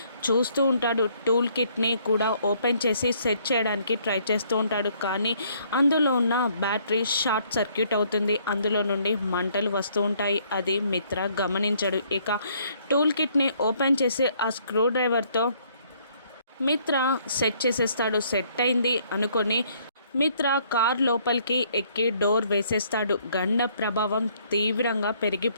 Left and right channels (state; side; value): inverted; both; correlation -0.65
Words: చూస్తూ ఉంటాడు. టూల్ కిట్ని కూడా ఓపెన్ చేసి సెట్ చేయడానికి ట్రై చేస్తూ ఉంటాడు. కానీ అందులో ఉన్న బ్యాటరీ షార్ట్ సర్క్యూట్ అవుతుంది. అందులో నుండి మంటలు వస్తూ ఉంటాయి. అది మిత్ర గమనించడు. ఇక టూల్ కిట్ని ఓపెన్ చేసి ఆ స్క్రూ డ్రైవర్తో మిత్ర సెట్ చేసేస్తాడు. సెట్ అయింది అనుకొని మిత్ర కార్ లోపలికి ఎక్కి డోర్ వేసేస్తాడు. గండ ప్రభావం తీవ్రంగా